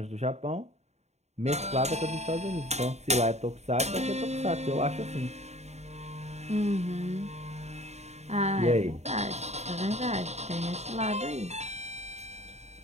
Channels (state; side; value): late; left; 0.32 ms